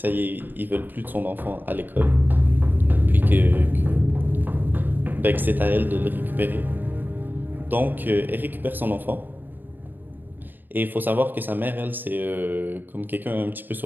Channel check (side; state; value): left; late; 0.091 ms